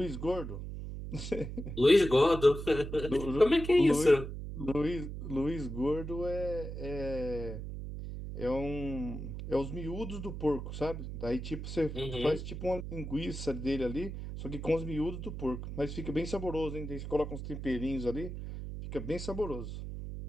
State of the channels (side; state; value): right; noise; hum, 7 dB below the sound